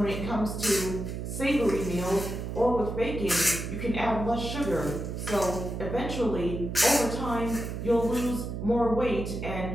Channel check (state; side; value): noise; right; hum, 5 dB below the sound